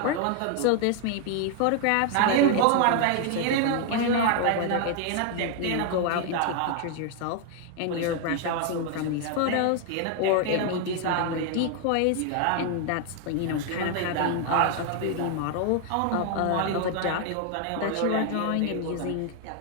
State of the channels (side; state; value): both; different; correlation 0.00